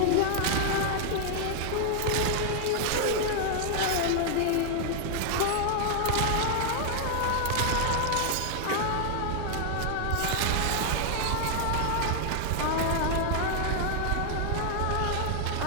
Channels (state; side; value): different; both; correlation 0.00